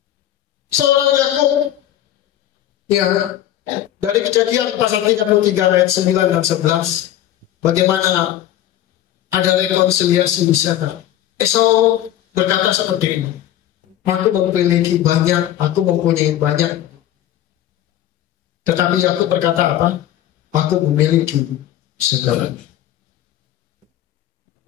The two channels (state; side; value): quieter; right; 12.3 dB